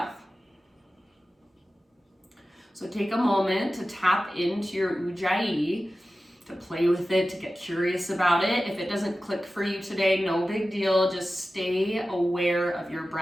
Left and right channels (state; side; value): normal; both; correlation 0.95